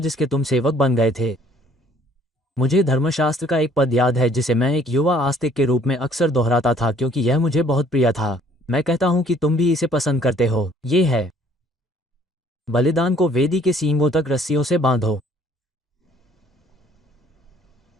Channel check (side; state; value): both; normal; correlation 0.59